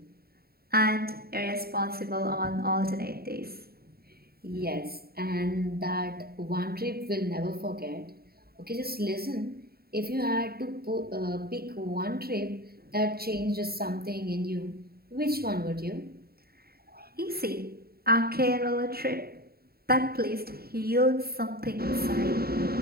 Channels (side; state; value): left; late; 0.45 ms